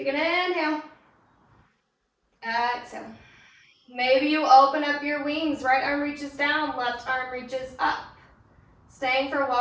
an inhale. Exhale. Maybe you open up your wings. Right arm reaches down, left arm reaches up. Staying for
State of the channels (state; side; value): identical; both; correlation 1.00